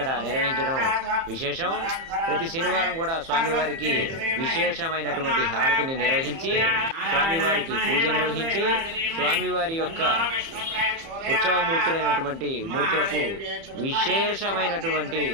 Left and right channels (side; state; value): left; late; 30 ms